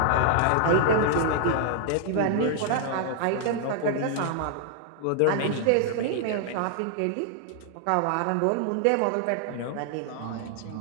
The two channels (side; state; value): both; different; correlation 0.00